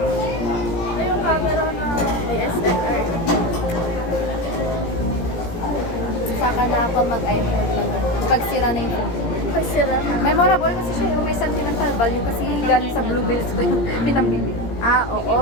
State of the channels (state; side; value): late; right; 17 ms